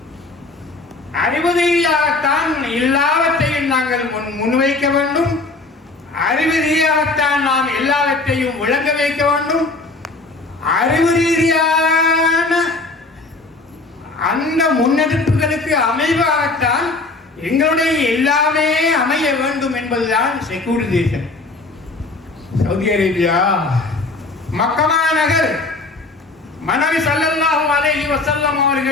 அறிவு ரீதியாகத்தான் எல்லாவற்றையும் நாங்கள் முன்வைக்க வேண்டும். அறிவு ரீதியாகத்தான் நாம் எல்லாவற்றையும் விளங்க வைக்க வேண்டும். அறிவு ரீதியான அந்த முன்னெடுப்புகளுக்கு அமைவாகத்தான் எங்களுடைய எல்லாமே அமைய வேண்டும் என்பதுதான் செக்குலரைசேஷன். சவுதி அரேபியா மக்கா நகர் மனைவி ஸல்லல்லாஹு அலைஹி வஸல்லம்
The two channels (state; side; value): quieter; right; 3.4 dB